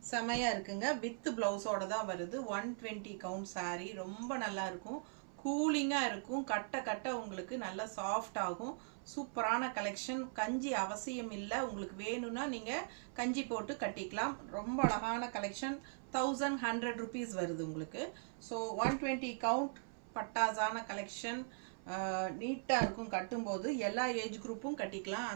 செமையா இருக்குங்க. வித் பிளவுஸோட தான் வருது. 120 கவுண்ட் saree ரொம்ப நல்லா இருக்கும். கூலிங்கா இருக்கும். கட்ட கட்ட உங்களுக்கு நல்ல சாஃப்ட் ஆகும். சூப்பரான கலெக்ஷன். கஞ்சி அவசியம் இல்லை. உங்களுக்கு வேணும்னா நீங்க கஞ்சி போட்டு கட்டிக்கலாம். ரொம்ப அழகான கலெக்ஷன். 1100 rupees வருது உங்களுக்கு. ஸோ 120 கவுண்ட் பட்டாசான கலெக்ஷன். நீட்டாக இருக்கும். கட்டும்போது எல்லா ஏஜ் குரூப்பும் கட்டிக்கலாம்.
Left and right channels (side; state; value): left; silent; 51 dB below the other